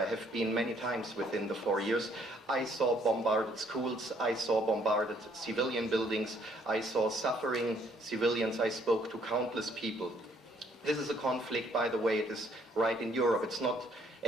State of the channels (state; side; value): normal; both; correlation 0.65